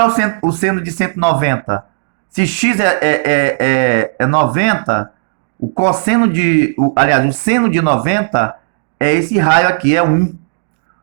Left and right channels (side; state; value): left; silent; digital silence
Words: é o seno de 190? Se x é 90, o cosseno aliás, o seno de 90 é esse raio aqui, é 1.